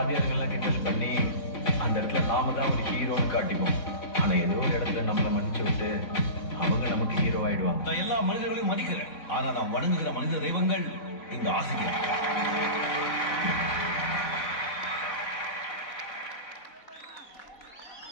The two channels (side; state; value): right; late; 4.0 ms